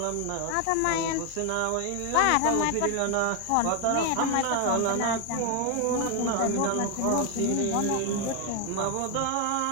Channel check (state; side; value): different; both; correlation 0.01